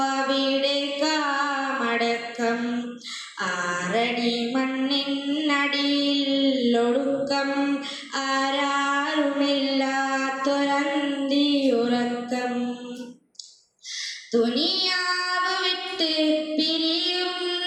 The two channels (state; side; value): identical; both; correlation 1.00